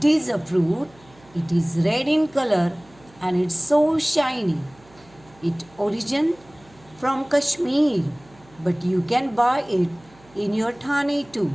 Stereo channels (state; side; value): noise; right; hum, 27 dB below the sound